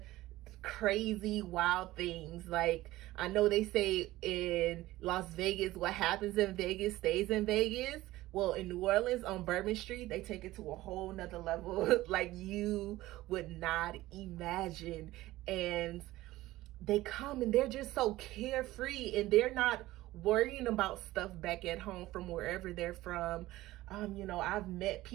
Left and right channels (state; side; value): quieter; left; 17.0 dB